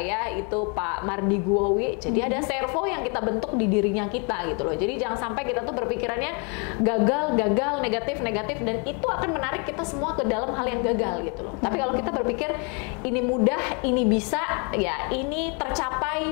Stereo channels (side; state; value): right; quieter; 35.3 dB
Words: itu Pak Mardi Guowi. Jadi ada servo yang kita bentuk di dirinya kita gitu loh. Jadi jangan sampai kita tuh berpikirannya gagal, negatif dan itu akan menarik kita semua ke dalam hal yang gagal gitu loh. Tapi kalau kita berpikir ini mudah, ini bisa, ya ini